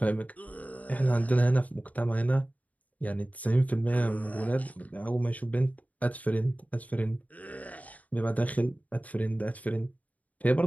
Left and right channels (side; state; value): right; late; 0.072 ms